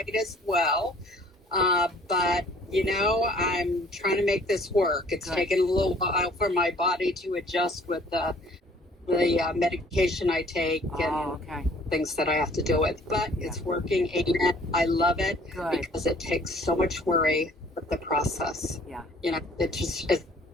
as well. But I'm trying to make this work. It's Good. taken a little while for my body to adjust with the medication I take and Okay. things that I have to deal with. But Yeah. it's working, and I love it Good. because it takes so much worry with the process. Yeah. It's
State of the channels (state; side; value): normal; both; correlation 0.55